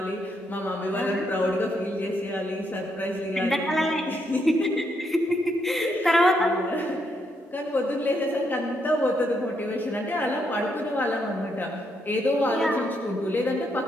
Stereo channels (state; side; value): normal; both; correlation 0.77